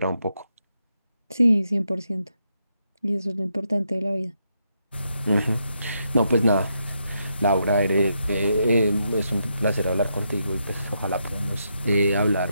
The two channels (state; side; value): inverted; both; correlation -0.81